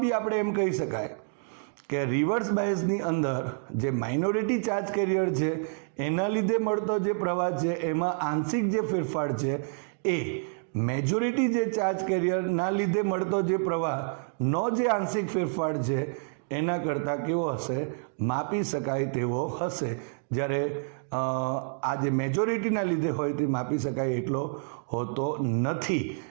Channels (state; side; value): silent; left; digital silence